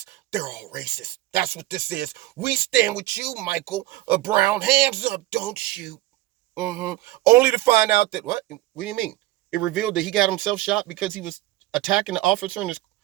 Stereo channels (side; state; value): left; quieter; 17.0 dB